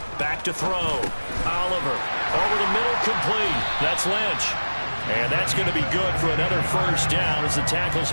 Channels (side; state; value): both; inverted; correlation -1.00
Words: Back to throw. Oliver. Over the middle, complete. That's Lynch. And that's going to be good for another first down as the tackle's